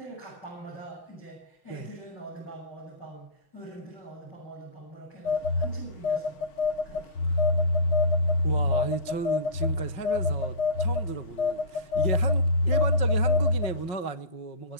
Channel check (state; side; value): late; right; 5.5 ms